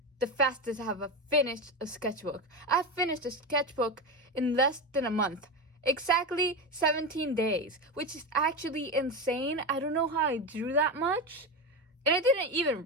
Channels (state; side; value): normal; both; correlation 0.18